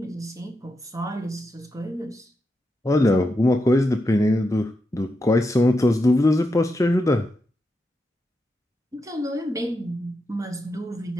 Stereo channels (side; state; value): both; normal; correlation 0.86